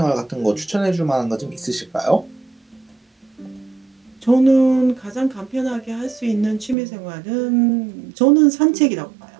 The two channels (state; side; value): drops out; left; at 6.8 s